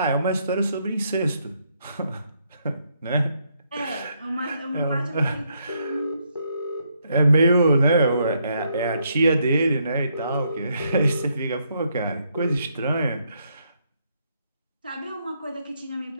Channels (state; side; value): inverted; both; correlation -0.75